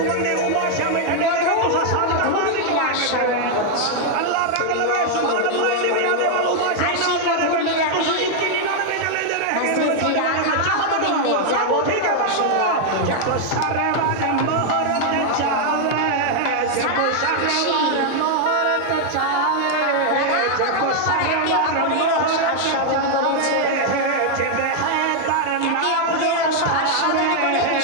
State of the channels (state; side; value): different; both; correlation 0.00